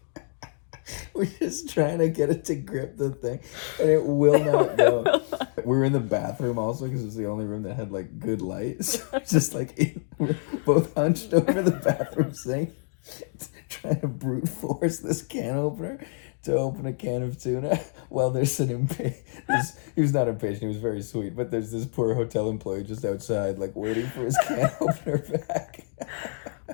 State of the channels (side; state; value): right; silent; 60 dB below the other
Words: We're just trying to get it to grip the thing, and it will not go. We're in the bathroom also because it's the only room that had like good light. So it's just like we're both hunched over the bathroom sink, trying to brute force this can opener to open a can of tuna. Well, there's an he was not impatient, he was very sweet, but there's this poor hotel employee just outside, like waiting for his can opener back.